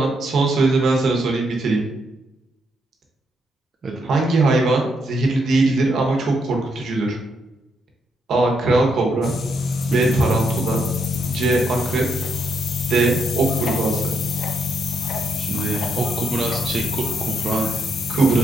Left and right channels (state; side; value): normal; both; correlation 0.77